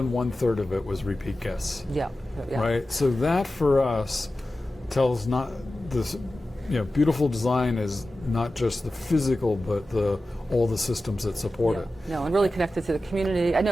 1/3 of it was repeat guests. Yeah. Right? So that for us tells not this, beautiful design is not just the physical, but all the systems that support it. No, and really connected to the community. I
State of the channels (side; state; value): both; normal; correlation 0.94